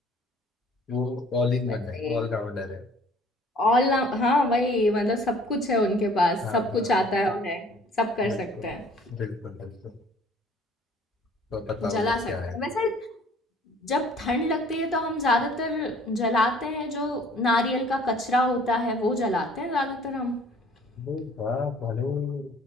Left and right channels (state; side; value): normal; both; correlation 0.54